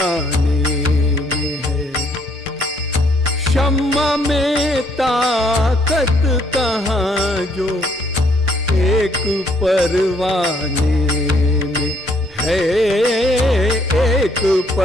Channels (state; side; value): normal; both; correlation 0.67